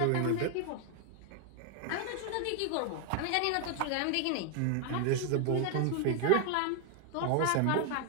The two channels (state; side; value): different; both; correlation 0.00